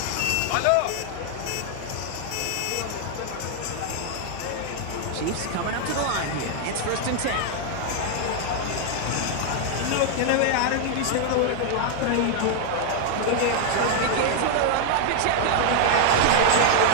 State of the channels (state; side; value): different; both; correlation 0.00